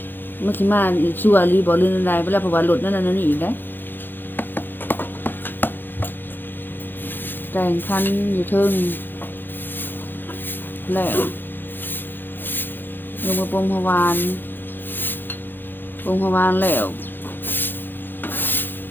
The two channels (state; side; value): late; right; 0.096 ms